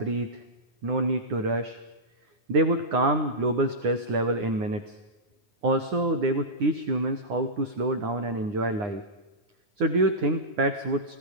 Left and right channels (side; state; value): left; late; 9.8 ms